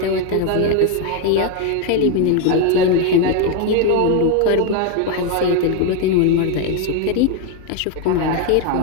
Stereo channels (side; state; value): both; different; correlation 0.01